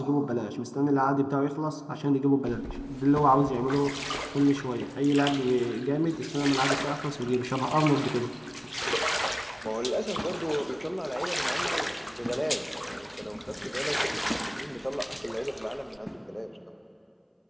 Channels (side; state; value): both; identical; correlation 1.00